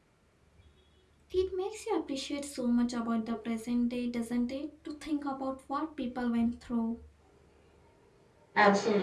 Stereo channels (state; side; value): identical; both; correlation 1.00